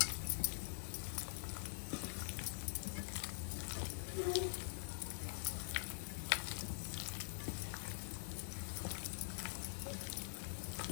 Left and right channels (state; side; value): silent; right; digital silence